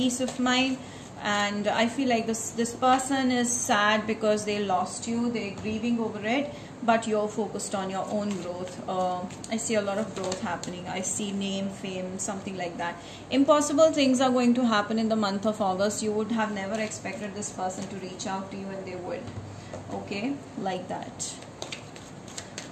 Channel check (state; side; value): identical; both; correlation 1.00